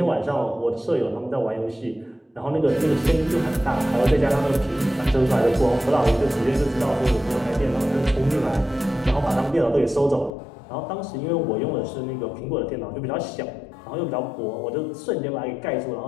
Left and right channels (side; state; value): right; drops out; at 10.3 s